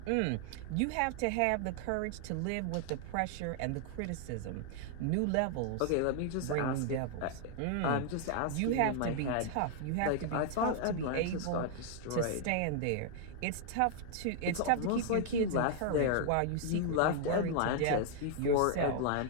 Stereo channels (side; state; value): both; different; correlation 0.00